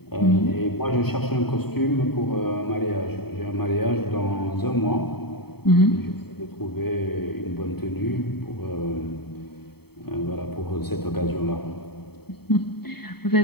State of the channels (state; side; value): late; right; 0.96 ms